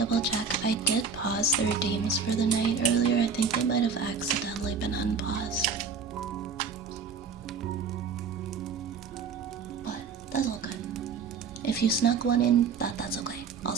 check. I did pause the redeems for the night earlier. I think they might have accidentally been unpaused. But that's all good. If you snuck one in, that's okay. I'll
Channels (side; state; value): left; quieter; 5.5 dB